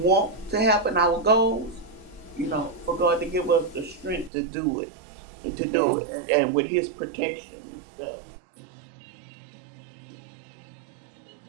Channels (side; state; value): left; drops out; at 4.3 s